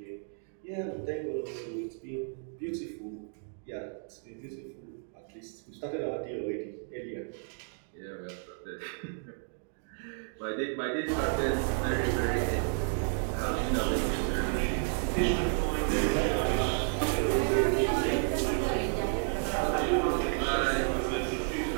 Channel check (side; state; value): left; silent; 57 dB below the other